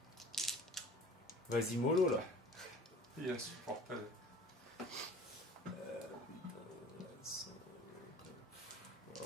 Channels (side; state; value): both; normal; correlation 0.45